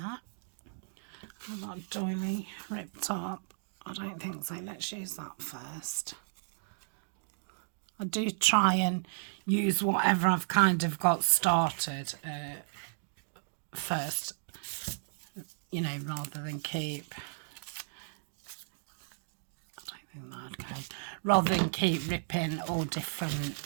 I've got a doily ripped up. I don't think so. Let's use that first. I do try and use whatever I've kind of got started first, you know, rather than keep, I don't think that'd go, rather than keep ripping all different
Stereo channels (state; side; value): silent; left; digital silence